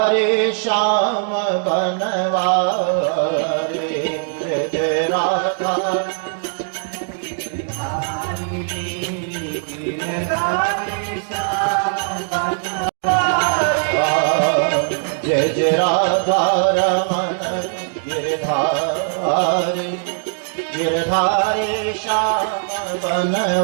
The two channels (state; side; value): silent; left; digital silence